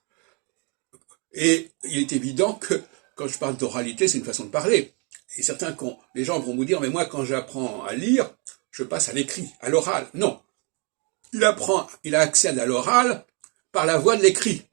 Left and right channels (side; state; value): left; quieter; 33.7 dB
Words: Et il est évident que quand je parle d'oralité, c'est une façon de parler. Et les gens vont vous dire, mais moi, quand j'apprends à lire, je passe à l'écrit, à l'oral. Non. Il a accès à l'oral par la voie de l'écrit,